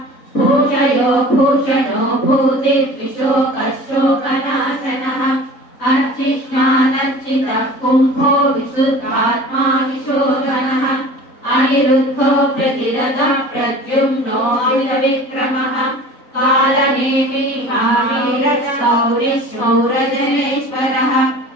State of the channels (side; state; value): right; late; 4.0 ms